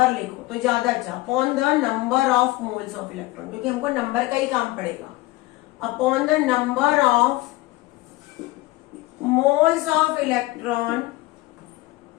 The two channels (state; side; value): quieter; right; 19.9 dB